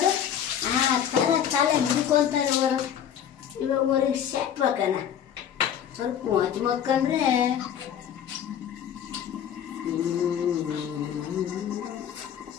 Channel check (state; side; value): quieter; right; 9.3 dB